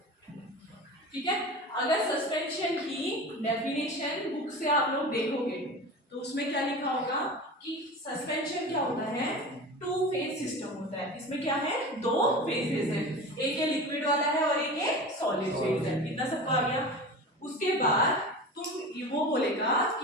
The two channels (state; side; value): normal; both; correlation 0.32